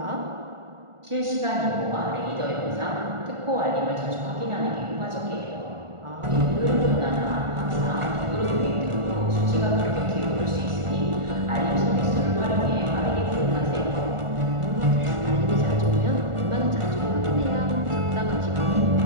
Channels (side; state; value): left; late; 1.4 ms